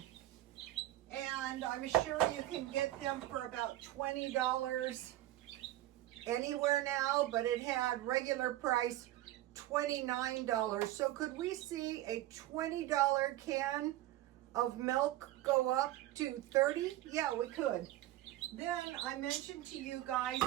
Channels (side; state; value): left; quieter; 15.2 dB